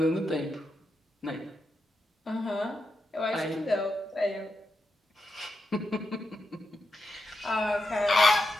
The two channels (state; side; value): normal; both; correlation 0.87